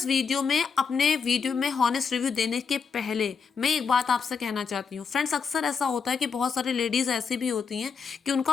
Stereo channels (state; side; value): quieter; right; 5.8 dB